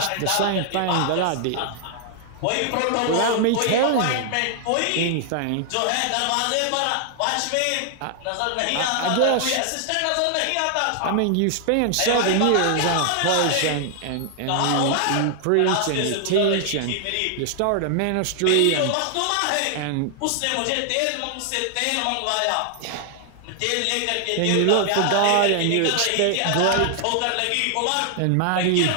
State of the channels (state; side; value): different; both; correlation 0.00